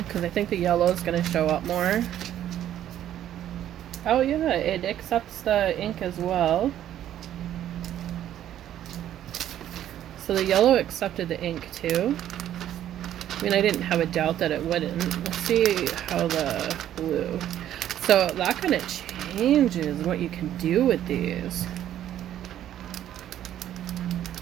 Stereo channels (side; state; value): left; quieter; 11.5 dB